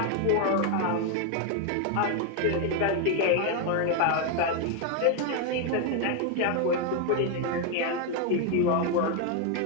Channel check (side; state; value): both; different; correlation 0.01